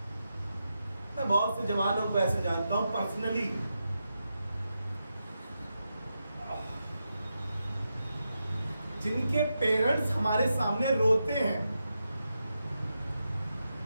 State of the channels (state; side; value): inverted; both; correlation -0.87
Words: मैं बहुत से जवानों को ऐसे जानता हूं पर्सनली, जिनके पेरेंट्स हमारे सामने रोते हैं